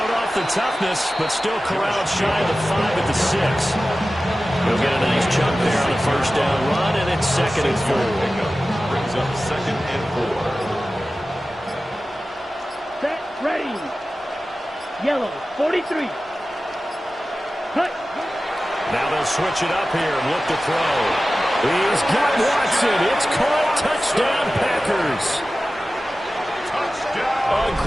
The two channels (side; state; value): both; normal; correlation 0.95